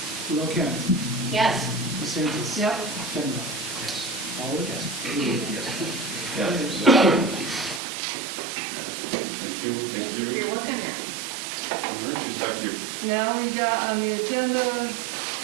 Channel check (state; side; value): drops out; left; at 7.8 s